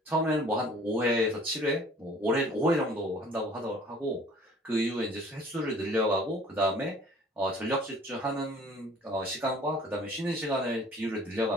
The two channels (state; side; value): normal; both; correlation 0.52